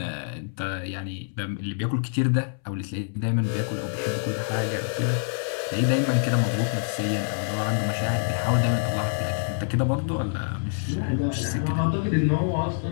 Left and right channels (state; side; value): silent; right; 60 dB below the other